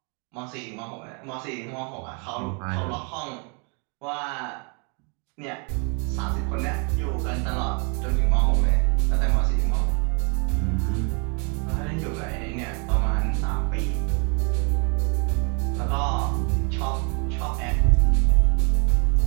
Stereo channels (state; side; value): quieter; left; 36.1 dB